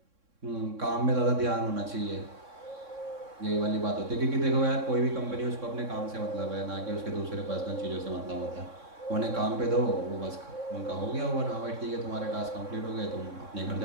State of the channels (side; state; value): left; late; 3.6 ms